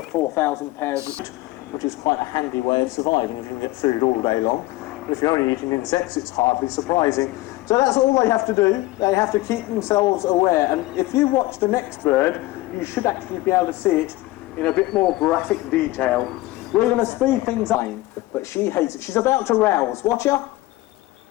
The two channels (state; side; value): quieter; right; 18.5 dB